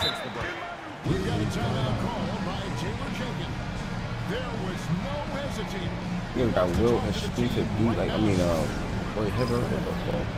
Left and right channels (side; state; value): both; identical; correlation 1.00